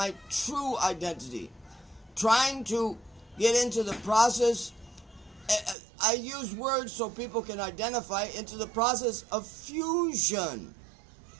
true identity, trying to get into the process. I use words so people can identify into the process of fusion.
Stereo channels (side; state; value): left; drops out; at 5.8 s